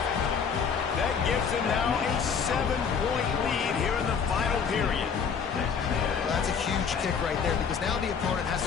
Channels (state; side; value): quieter; right; 6.4 dB